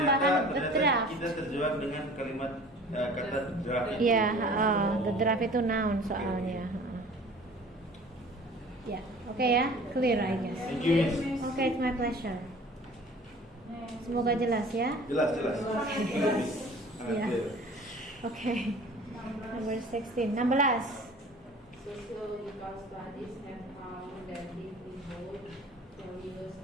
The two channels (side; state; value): both; normal; correlation 0.46